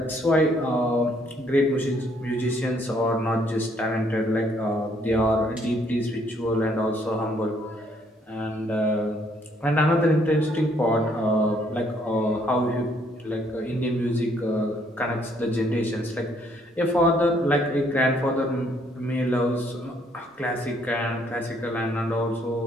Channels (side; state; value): both; normal; correlation 0.67